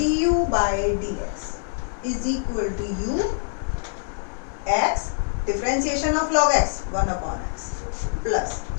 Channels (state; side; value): silent; right; digital silence